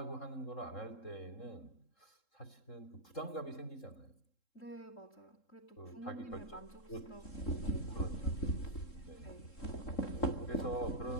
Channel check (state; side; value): late; right; 3.7 ms